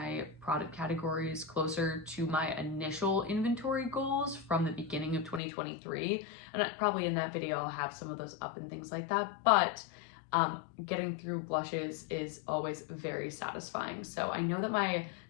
product categories closer to my initial inventory goals from the beginning of 2023. And probably in that video, I'll have some of those up and things like that. But getting through blushes is always very satisfying. So I know that my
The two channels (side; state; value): right; drops out; at 5.4 s